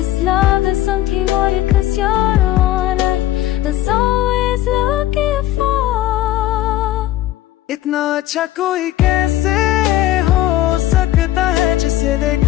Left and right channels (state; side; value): quieter; right; 14.2 dB